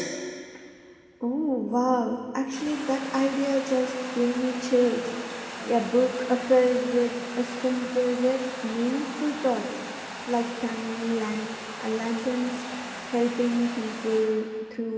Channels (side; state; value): both; identical; correlation 1.00